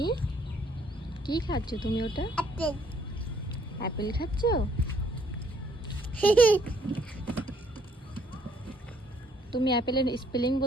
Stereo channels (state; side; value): normal; both; correlation 0.66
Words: কি খাচ্ছ তুমি? ওটা আপেল অ্যাপেল খাচ্ছ? তুমি অ্যাপেলের স্পেলিং